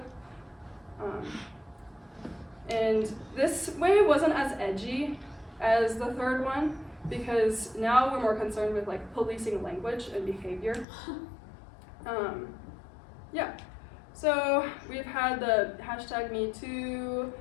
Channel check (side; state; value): right; drops out; at 10.9 s